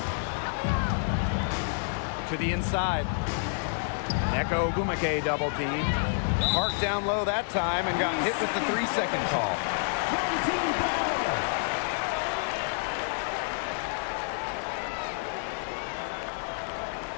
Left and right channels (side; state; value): right; silent; digital silence